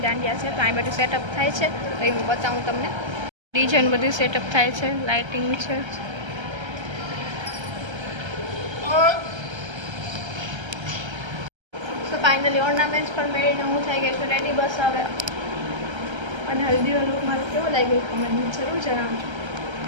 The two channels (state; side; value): late; left; 1.3 ms